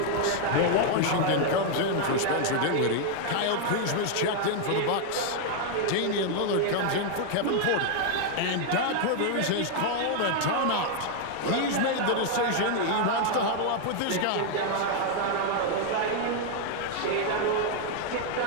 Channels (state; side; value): different; both; correlation 0.00